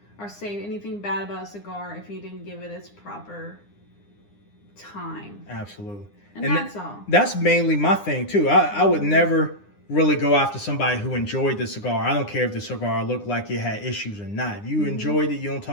or say anything bad about a cigar if you didn't give it its proper time. Absolutely. And that's all. That's mainly my thing too. I would never really go after somebody who enjoyed the cigar. I don't care if the cigar looked like it had issues or not. If you enjoyed it, you don't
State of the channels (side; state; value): right; late; 9.8 ms